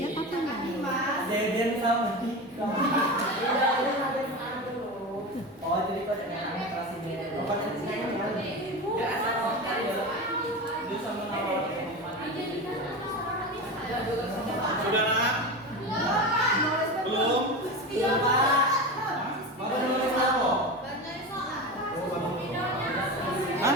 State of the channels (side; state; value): both; normal; correlation 0.24